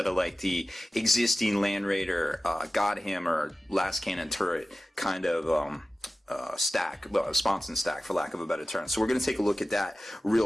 of like the existing Land Raider Godhammer last cannon turret kind of sponson stack, for lack of a better term. So we're going to take a look at that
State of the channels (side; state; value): both; normal; correlation 0.95